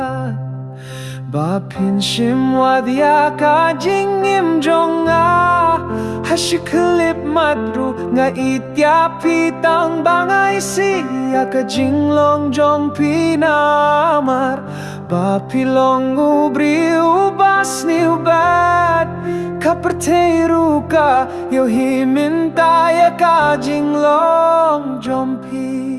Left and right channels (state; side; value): identical; both; correlation 1.00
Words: Bapin shimwadya ka jingim jonga Hashiklip madru nga itya pitang bangay siya ka jinglong jong pinamar Bapilong ubri ubas ni ubat Kaperteru ka yo himintaya ka jinglong jong pi